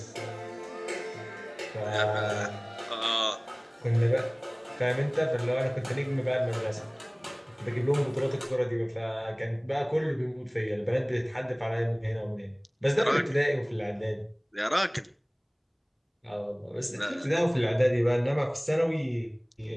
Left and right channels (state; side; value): identical; both; correlation 1.00